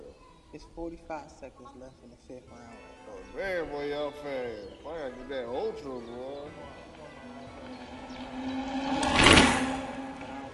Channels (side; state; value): both; identical; correlation 1.00